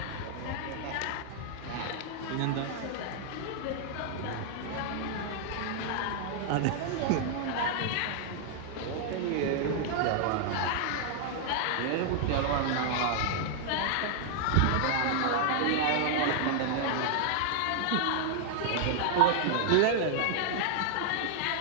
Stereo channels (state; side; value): different; both; correlation -0.01